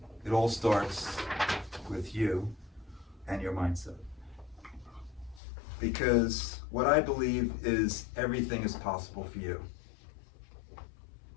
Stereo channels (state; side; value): drops out; right; at 5.4 s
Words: It all starts with you and your mindset. Because what I believe is everything is possible for you.